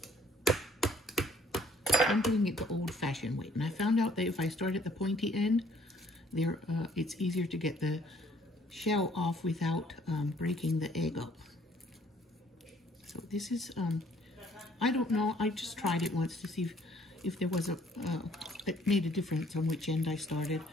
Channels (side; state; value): both; normal; correlation 0.61